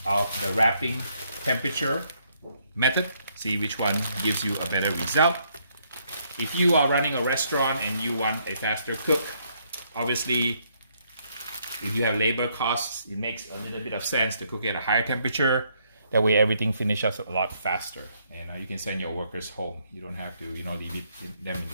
of the wrapping temperature method, see which one gives you a better result. If you are running a restaurant and you want a faster cook, obviously if you have labor costs, it makes a little bit of sense to cook it at a higher temperature. That way everything finishes a lot faster, and you can send your workers home. You don't have to, leave them in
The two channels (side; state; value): both; inverted; correlation -0.72